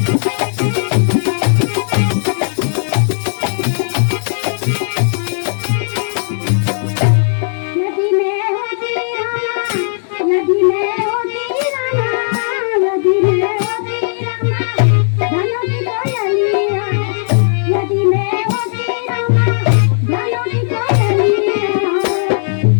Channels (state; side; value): silent; right; digital silence